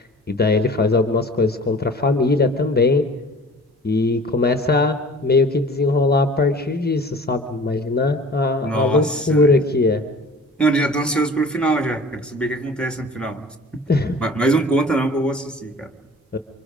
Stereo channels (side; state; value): both; normal; correlation 0.45